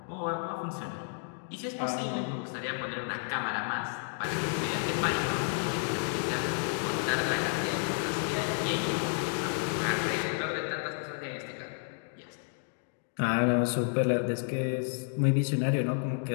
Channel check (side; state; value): right; silent; 57 dB below the other